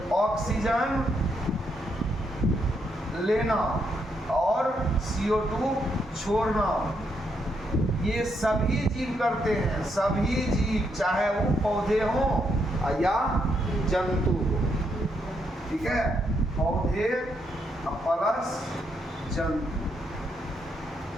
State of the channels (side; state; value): both; normal; correlation 0.77